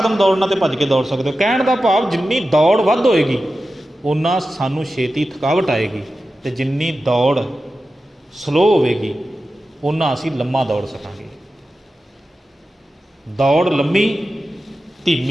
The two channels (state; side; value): normal; both; correlation 0.93